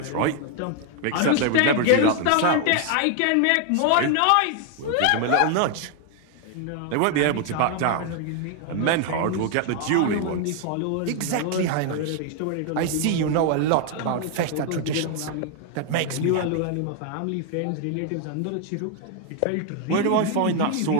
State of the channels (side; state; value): both; different; correlation 0.01